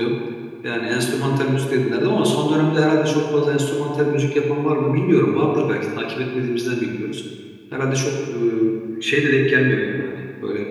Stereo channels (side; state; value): both; identical; correlation 1.00